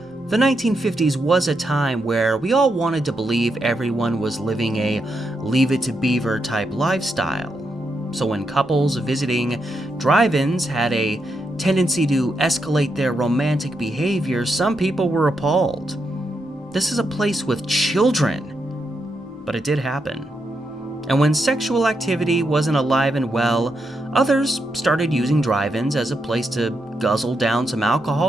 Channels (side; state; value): both; normal; correlation 0.83